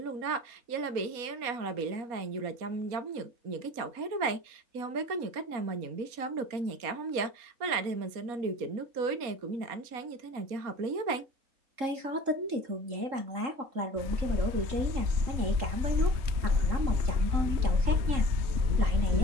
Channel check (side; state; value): left; late; 4.2 ms